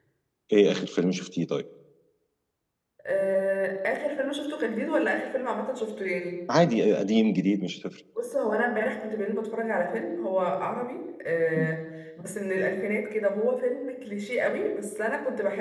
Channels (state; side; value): identical; both; correlation 1.00